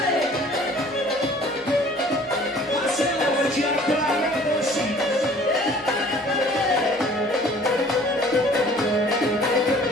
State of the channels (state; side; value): normal; both; correlation 0.52